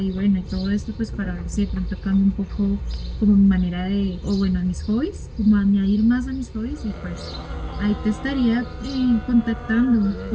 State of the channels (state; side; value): identical; both; correlation 1.00